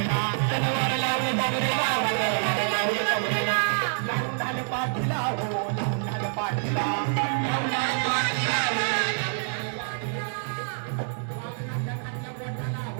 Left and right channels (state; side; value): silent; left; digital silence